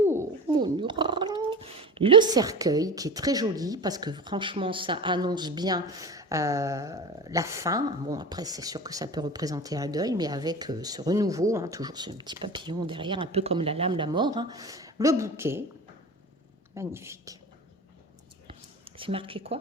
mon mural. Le cercueil, qui est très joli, parce que franchement, ça annonce bien la fin. Bon, après, c'est sûr que ça peut représenter un deuil, mais avec ce renouveau, hein, toujours ce petit papillon derrière, un peu comme la lame, la mort. Hein. Le bouquet, magnifique. C'est marqué quoi?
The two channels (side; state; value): both; normal; correlation 0.30